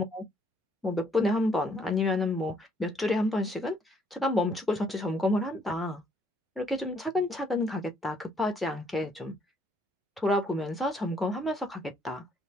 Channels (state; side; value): normal; both; correlation 0.67